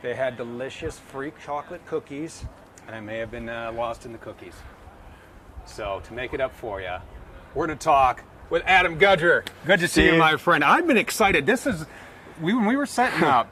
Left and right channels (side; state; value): both; identical; correlation 1.00